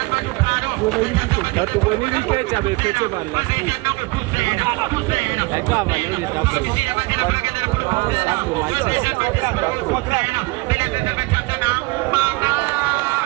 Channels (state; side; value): quieter; left; 24.3 dB